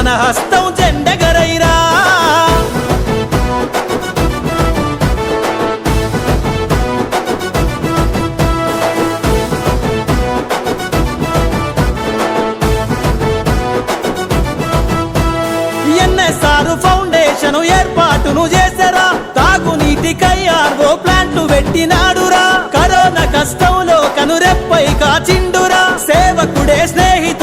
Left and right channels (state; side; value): identical; both; correlation 1.00